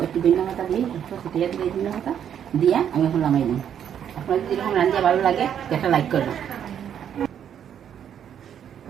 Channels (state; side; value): quieter; left; 9.1 dB